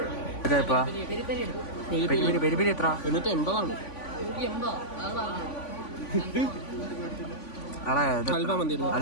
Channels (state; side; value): late; right; 3.5 ms